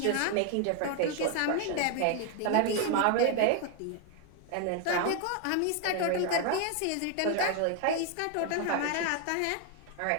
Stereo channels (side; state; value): both; different; correlation 0.00